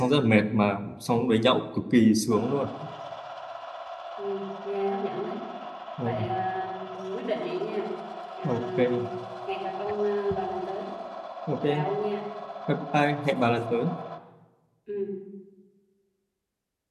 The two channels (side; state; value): both; identical; correlation 1.00